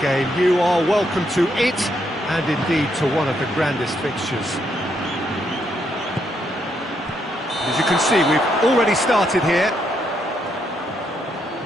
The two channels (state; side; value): normal; both; correlation 0.76